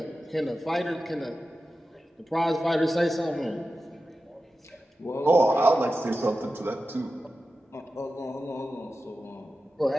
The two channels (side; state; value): both; normal; correlation 0.93